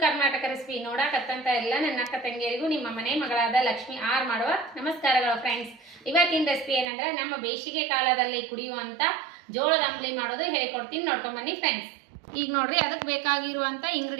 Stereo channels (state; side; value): drops out; left; at 6.9 s